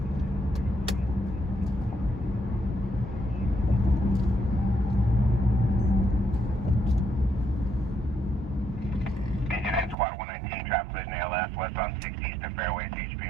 Squad 119, traffic collision ALS, westbound 60 Eastern Fairway,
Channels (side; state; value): left; drops out; at 10.0 s